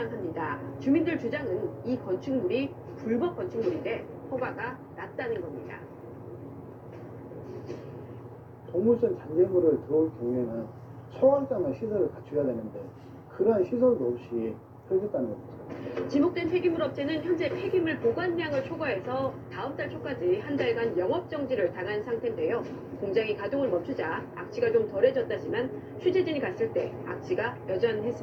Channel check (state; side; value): identical; both; correlation 1.00